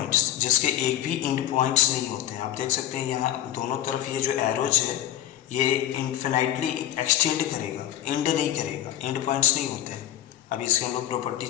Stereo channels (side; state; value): right; quieter; 12.4 dB